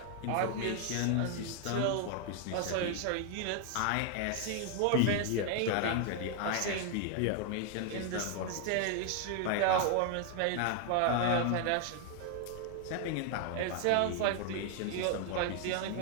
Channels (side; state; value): both; different; correlation 0.00